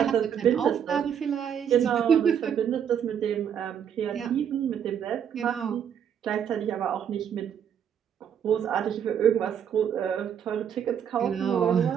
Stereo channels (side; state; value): left; quieter; 8.5 dB